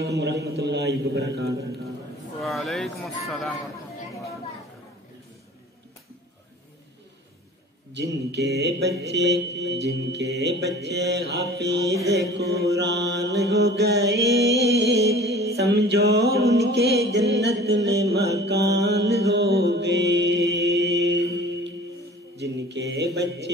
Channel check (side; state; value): both; normal; correlation 0.45